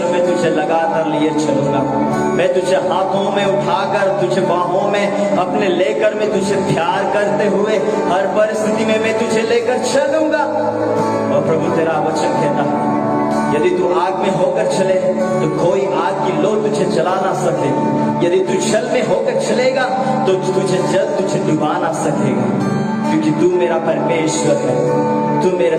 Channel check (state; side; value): identical; both; correlation 1.00